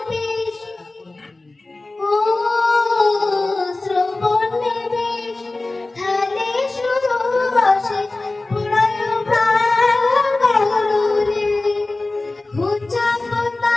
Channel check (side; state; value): right; quieter; 3.1 dB